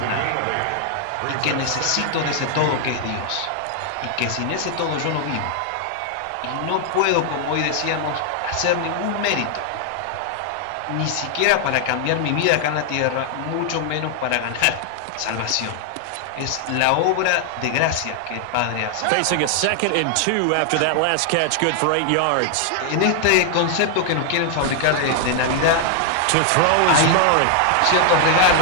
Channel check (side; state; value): both; different; correlation 0.00